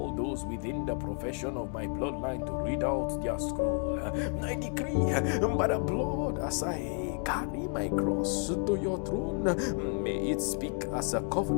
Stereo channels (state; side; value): quieter; right; 38.9 dB